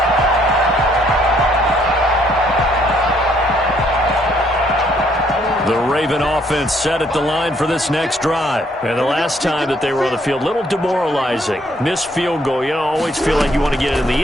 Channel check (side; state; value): both; normal; correlation 0.67